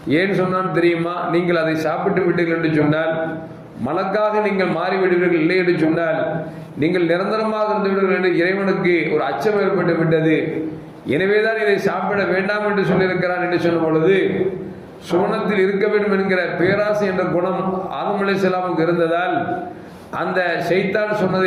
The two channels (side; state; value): both; identical; correlation 1.00